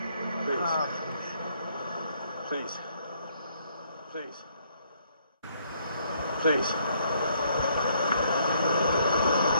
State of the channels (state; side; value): inverted; both; correlation -0.68